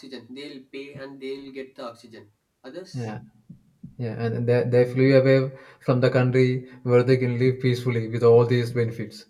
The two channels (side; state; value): both; identical; correlation 1.00